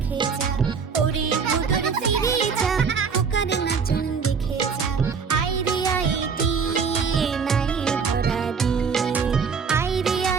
যা। ওরে ভোদর ফিরে যা, খোকার নাচন দেখে যা। আইরে আইটি নাই ভরা দি, আইরে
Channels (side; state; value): left; quieter; 5.8 dB